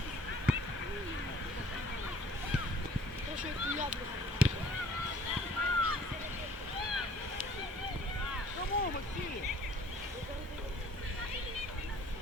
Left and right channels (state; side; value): normal; both; correlation 0.54